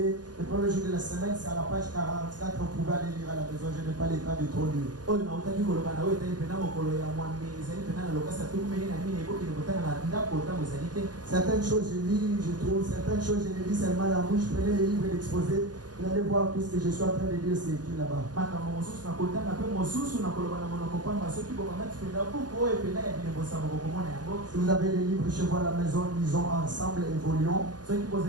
le premier jour de la semaine, c'est à la page 44, on pouvait aller lire à la maison, je n'ai pas le temps de trop lire. Certaines choses je lis, je trouve, certaines choses je les lis seulement la bouche, je prenais les livres et l'exposé. Vous allez voir tout ce que je suis en train de dire, c'est écrit là-bas. Si vous avez des livres chez vous à la maison, lisons ensemble, évoluons.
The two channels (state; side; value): late; left; 0.69 ms